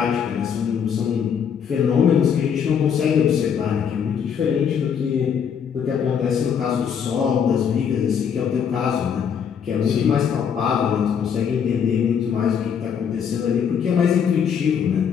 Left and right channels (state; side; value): quieter; right; 7.5 dB